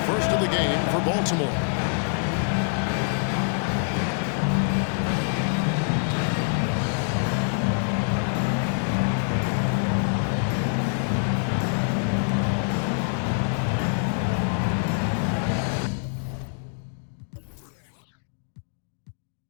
First of the game for Baltimore.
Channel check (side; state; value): right; silent; digital silence